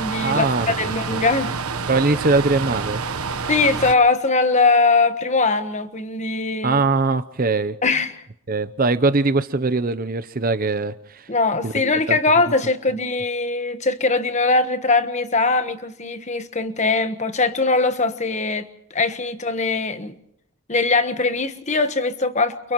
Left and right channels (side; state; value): both; normal; correlation -0.02